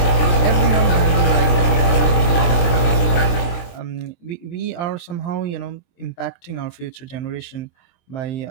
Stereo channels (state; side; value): late; right; 23 ms